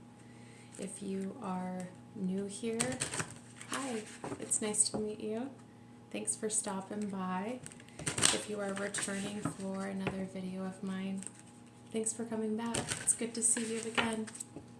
If you are new here, hi, it's nice to meet you. Thanks for stopping by. If you are returning for another video of mine, thanks for coming back. It's good to see you again.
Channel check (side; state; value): both; identical; correlation 1.00